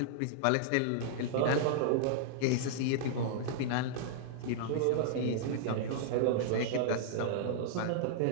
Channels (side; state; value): both; different; correlation -0.01